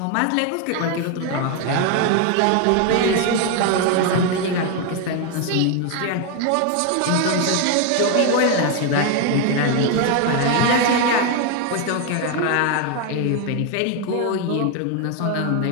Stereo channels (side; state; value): both; different; correlation 0.01